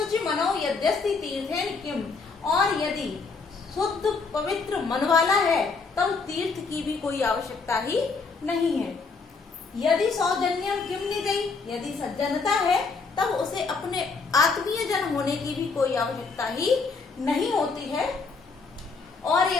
मनो यद्यस्ति तीर्थेन किम, और यदि शुद्ध पवित्र मन वाला है तब तीर्थ की भी कोई आवश्यकता ही नहीं है। यदि सौजन्यम किम निजई, यदि सज्जनता है तब उसे अपने आत्मीय जन होने की भी कोई आवश्यकता ही नहीं होती है। और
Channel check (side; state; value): right; quieter; 4.5 dB